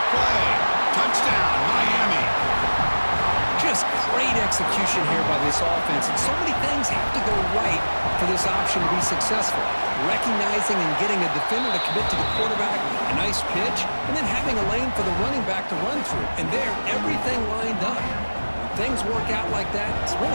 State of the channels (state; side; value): inverted; both; correlation -1.00